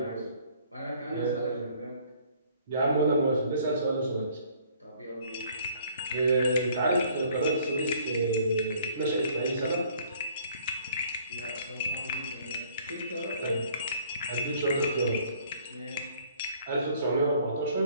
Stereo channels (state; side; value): inverted; both; correlation -0.58